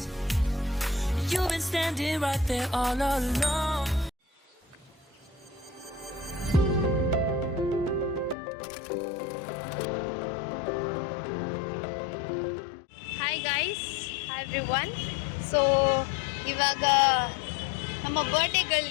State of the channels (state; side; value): drops out; right; at 8.3 s